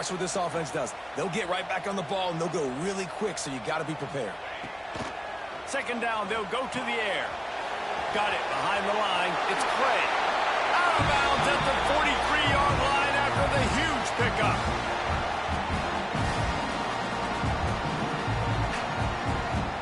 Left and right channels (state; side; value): identical; both; correlation 1.00